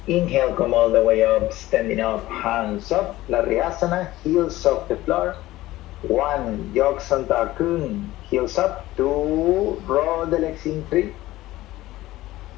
Inhale, come all the way up, standing up, hands up. Lariyasana, heels off the floor. 1, Yoksanta Kun, heels up. 2, roll the legs in. 3.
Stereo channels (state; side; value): quieter; right; 16.7 dB